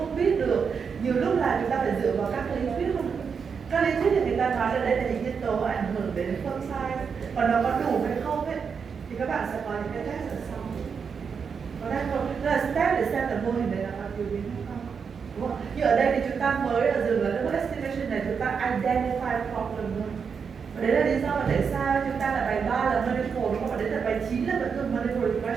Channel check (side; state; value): left; quieter; 6.2 dB